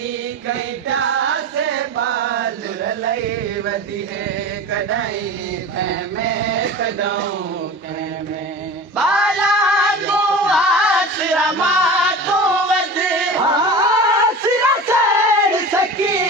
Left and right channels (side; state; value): both; normal; correlation 0.33